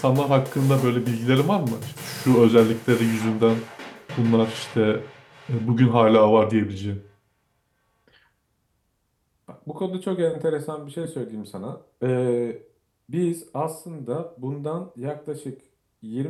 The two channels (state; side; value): identical; both; correlation 1.00